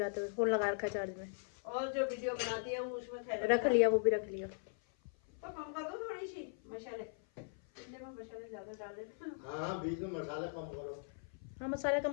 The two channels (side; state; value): right; silent; 52 dB below the other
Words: हुए। फोन लगा रखा है चार्ज में, और जो वीडियो बनाती है वो उसमें थैले रख लिया, वो भी रख लिया। तो कम कर दो थोड़ी सी मसाले, इतने में मसाले ज्यादा डाल देते। हाँ, बीच में मसाला कम करो। हाँ मसाले